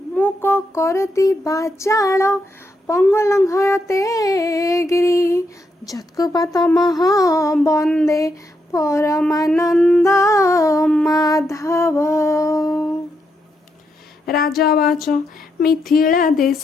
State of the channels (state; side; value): normal; both; correlation 0.81